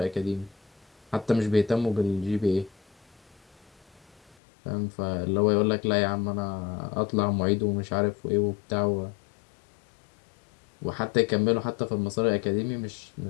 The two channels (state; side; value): drops out; right; at 4.4 s